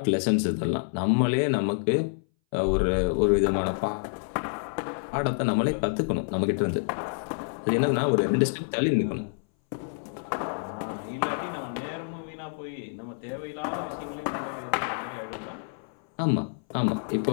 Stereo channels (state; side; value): silent; right; 59 dB below the other